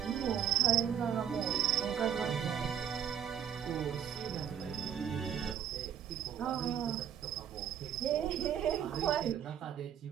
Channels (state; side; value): quieter; left; 9.0 dB